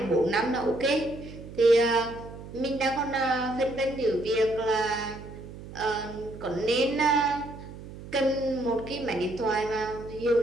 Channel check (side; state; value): right; noise; hum, 14 dB below the sound